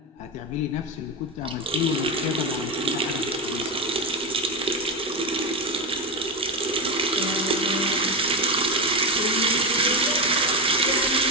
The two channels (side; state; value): both; normal; correlation 0.14